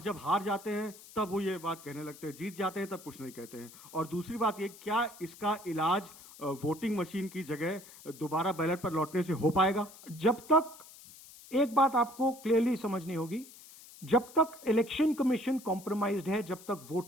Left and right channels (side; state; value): left; noise; hiss, 19 dB below the sound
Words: जब हार जाते हैं तब वो ये बात कहने लगते हैं, जीत जाते हैं तब कुछ नहीं कहते हैं। और दूसरी बात ये, क्या इसका इलाज वोटिंग मशीन की जगह दोबारा बैलेट पर लौटने से हो पाएगा? जब तक, एक बात आपको क्लियरली समझनी होगी, जब तक इलेक्शन कमीशन कॉम्प्रोमाइज्ड है, जब तक